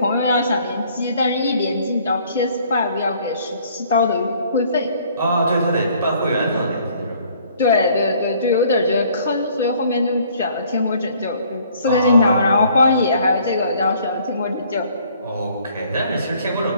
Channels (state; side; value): inverted; both; correlation -0.60